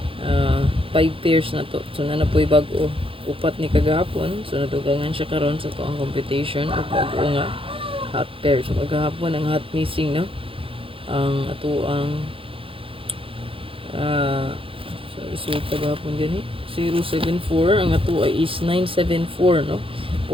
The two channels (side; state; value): left; late; 0.26 ms